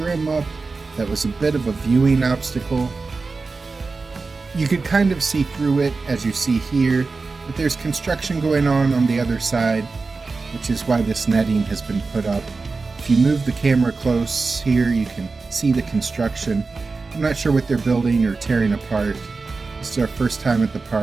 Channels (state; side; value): quieter; left; 4.1 dB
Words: up that was a bit of a viewing obstacle. You could kind of see through it as you see here, but there's construction going on the other side, which is why this netting has been put up. If you move the camera close here, you can see the construction. I'm not sure what they're building or tearing apart. This is our first time at the